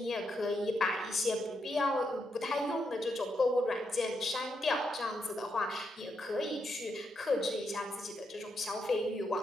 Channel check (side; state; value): both; normal; correlation 0.81